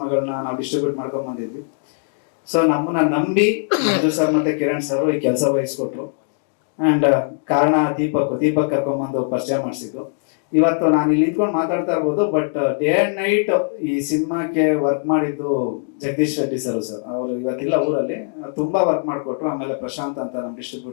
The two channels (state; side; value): silent; right; digital silence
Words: ನಾವು ಡಿಸ್ಟ್ರಿಬ್ಯೂಟ್ ಮಾಡ್ಕೊಂಡ್ ಬಂದಿದ್ವಿ. ಸೊ ನಮ್ಮನ್ನ ನಂಬಿ ಮಂಜು ಸರ್ ಮತ್ತೆ ಕಿರಣ್ ಸರ್ ಈ ಕೆಲಸ ವಹಿಸ್ಕೊಟ್ರು. ಅಂಡ್ ಕಾರಣ ದೀಪಕ್ ಕರ್ಕೊಂಡ್ಬಂದು ಪರಿಚಯ ಮಾಡಿಸಿದ್ರು. ಇವತ್ತು ನಾನು ಇಲ್ಲಿ ನಿಂತ್ಕೊಂಡು ಮಾತಾಡ್ತಾ ಇರ್ಬೋದು, ಬಟ್ ಡೇ ಅಂಡ್ ನೈಟ್ ಈ ಸಿನಿಮಾಕ್ಕೆ ವರ್ಕ್ ಮಾಡಿದ್ದು ಜಗದೀಶ್ ರೆಡ್ಡಿ ಸರ್. ಅವರು ಇವತ್ತಿಲ್ಲ ಊರಲ್ಲಿ, ತುಂಬಾ ವರ್ಕ್ ಮಾಡಿಕೊಟ್ರು. ಆಮೇಲೆ ಪ್ರಶಾಂತ್ ಅಂತ ನಮ್ಮ